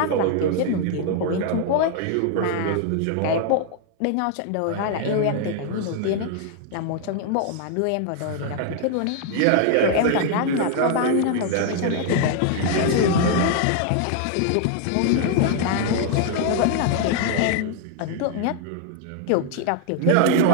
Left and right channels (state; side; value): different; both; correlation 0.00